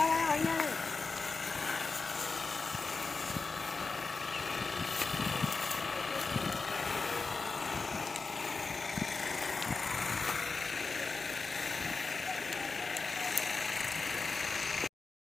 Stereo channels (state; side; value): quieter; right; 4.2 dB